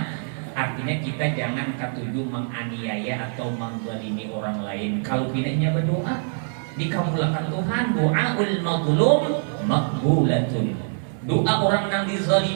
artinya kita jangan ketujuh menganiaya atau menzalimi orang lain. Kalau pinanya berdoa dikabulkan Tuhan, doaul mazlum maqbulatun. Doa orang yang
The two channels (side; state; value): left; silent; digital silence